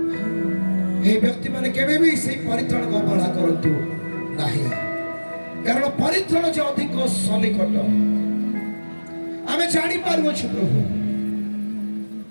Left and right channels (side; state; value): both; inverted; correlation -1.00